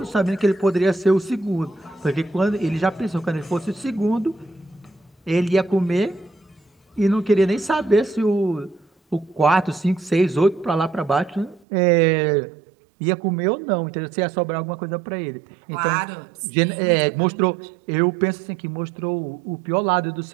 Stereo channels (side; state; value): left; drops out; at 11.7 s